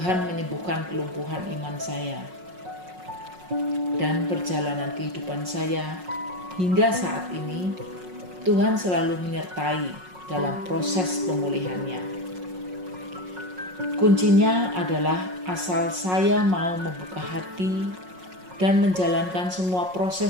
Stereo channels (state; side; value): late; left; 5.5 ms